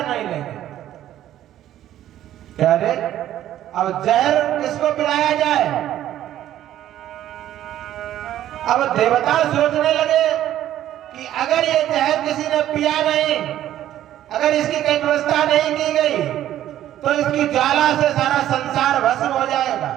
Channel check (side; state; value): left; quieter; 12.4 dB